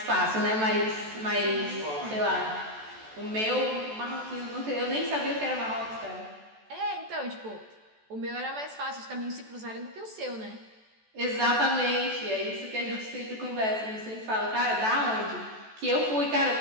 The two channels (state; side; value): late; left; 14 ms